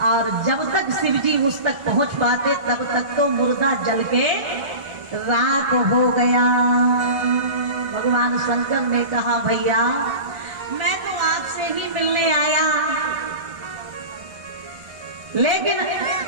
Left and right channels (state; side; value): late; left; 1.4 ms